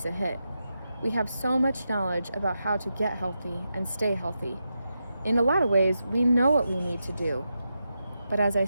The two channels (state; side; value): inverted; both; correlation -0.88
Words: a hit. We have so much knowledge about how to get healthy and stay healthy. In a lot of ways, we know what we need to do. But as I